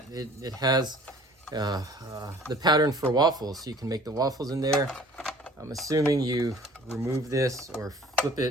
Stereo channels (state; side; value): normal; both; correlation 0.50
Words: It has the pattern for waffles, so you can make the waffles in there. I'm assuming you remove this or flip